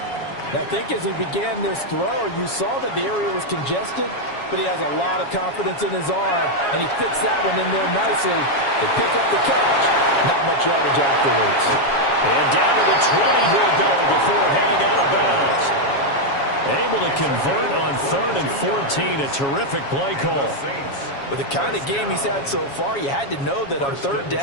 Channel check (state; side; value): late; right; 7.2 ms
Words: I think as he began this throw, you saw that the area was congested, but he has a lot of confidence in his arm, and he fits that one in there nicely. They pick up the catch. Not much yardage afterwards. And down to the 20 he'll go before heading out of bounds. Able to convert on 3rd and 14. A terrific play call. With the kind of game he's had so far, you had to know that on 3rd